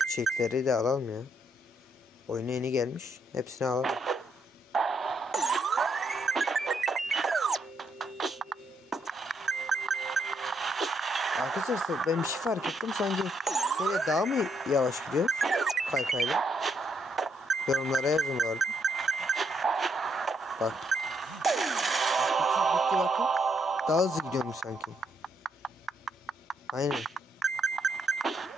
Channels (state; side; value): normal; both; correlation 0.75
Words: çiçekleri de alalım ya. Oyuna yeni gelmiş. Hepsini alalım. Arkadaşlar ben bir şey fark ettim. Sanki böyle daha mı yavaş gidiyor? Kaykayla. Yorumlara yazın bu arada. Bak. Bitti bakın. Daha hızlı gidiyormuş sanki. Aynen.